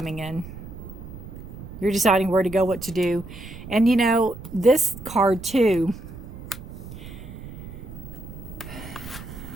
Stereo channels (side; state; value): right; noise; rumble, 13 dB below the sound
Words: in. You're deciding where to go, what to do. And you know, this card too,